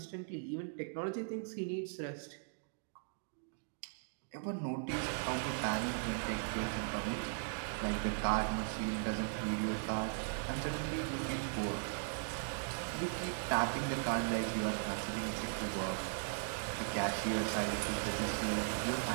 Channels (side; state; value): left; silent; digital silence